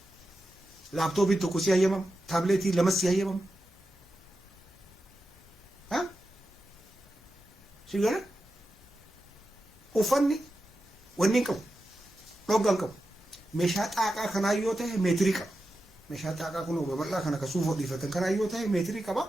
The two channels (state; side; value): normal; both; correlation 0.90